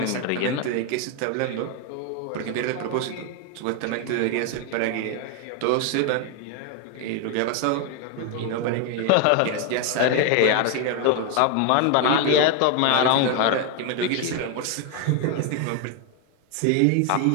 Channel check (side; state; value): both; different; correlation 0.01